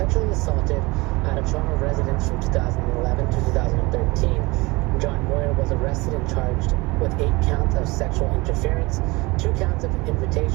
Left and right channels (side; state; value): left; quieter; 23.7 dB